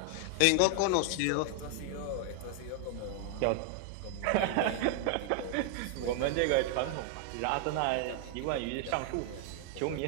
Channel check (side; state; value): both; different; correlation 0.00